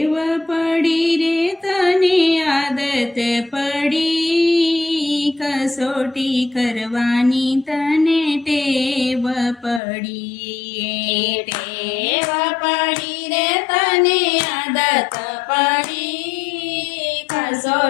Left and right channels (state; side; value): drops out; right; at 9.8 s